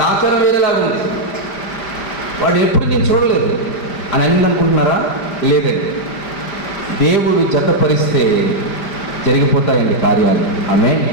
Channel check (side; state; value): right; late; 5.0 ms